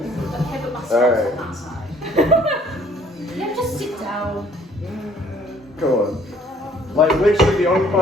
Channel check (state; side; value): normal; both; correlation 0.59